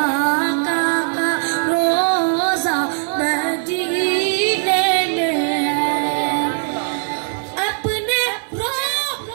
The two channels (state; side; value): silent; left; digital silence